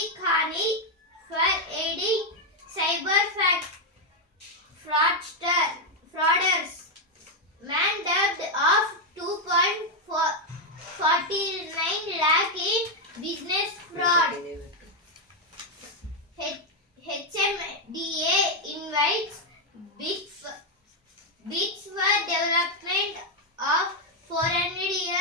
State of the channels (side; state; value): both; normal; correlation 0.02